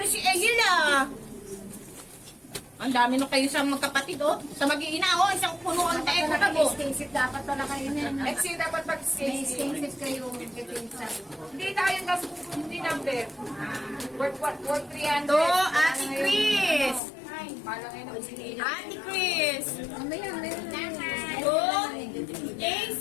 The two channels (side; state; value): right; drops out; at 17.0 s